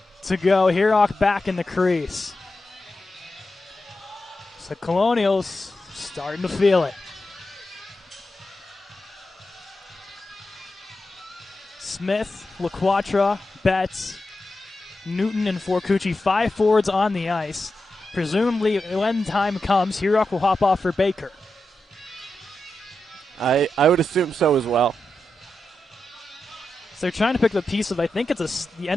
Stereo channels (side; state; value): both; normal; correlation 0.89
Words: to go. Herock back in the crease. So Colonials starting to feel it. Smith, LaQuatra, Betts, Newton, and Forcucci, 5 forwards on the ice. Presumably, when time comes, Herock will hop off for Baker. I would assume so as well. So they're trying to pick the piece of, I think it's the